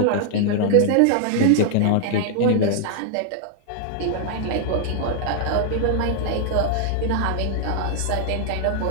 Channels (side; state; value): both; different; correlation -0.01